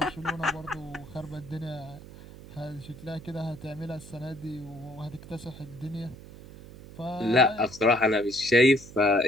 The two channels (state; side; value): noise; right; hum, 17 dB below the sound